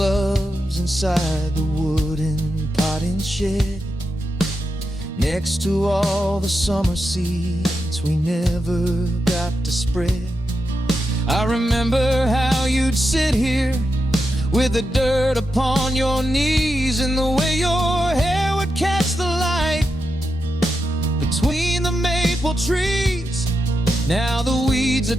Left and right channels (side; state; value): both; normal; correlation 0.87